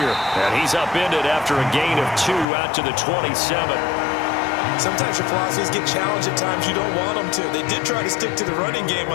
And he's upended after a gain of 2 out to the 27. Sometimes your philosophies get challenged at times you don't want them to. They did try to stick to the running game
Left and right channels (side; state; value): right; drops out; at 2.5 s